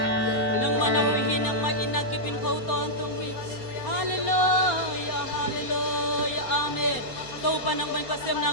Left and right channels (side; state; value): right; late; 4.3 ms